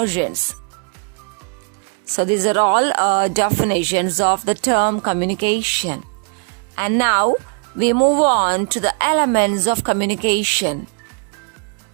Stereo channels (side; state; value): left; quieter; 38.8 dB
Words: So these are all definitions of the term communication. And now we move on to the elements of communication.